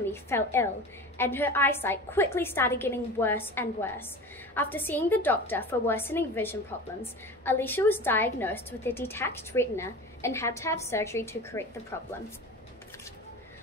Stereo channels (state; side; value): normal; both; correlation 0.34